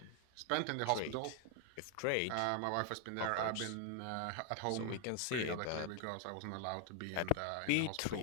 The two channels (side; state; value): both; different; correlation 0.00